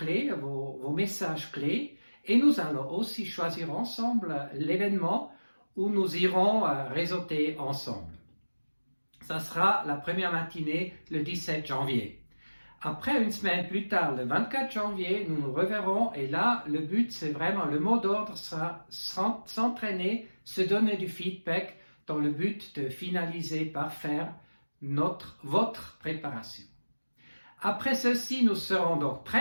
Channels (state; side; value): inverted; both; correlation -1.00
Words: vos messages clés, et nous allons aussi choisir ensemble l'événement où nous irons réseauter ensemble. Ça sera la première matinée le 17 janvier. Après, une semaine plus tard, le 24 janvier, nous nous reverrons et là, le but, c'est vraiment, le mot d'ordre sera s'entraîner, se donner du feedback dans le but de finaliser par faire votre préparation. Après ceci, nous serons donc